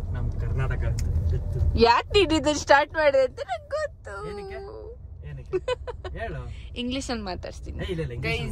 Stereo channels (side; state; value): both; identical; correlation 1.00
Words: ನಮ್ ಕರ್ನಾಟಕ. ಯಾಕೆ ನೀಡಿದ್ದು ಸ್ಟಾರ್ಟ್ ಮಾಡಿದೆ ಅಂತ ನಂಗೆ ಗೊತ್ತು. ಇಂಗ್ಲಿಷ್ ಅಲ್ಲಿ ಮಾತಾಡ್ತೀನಿ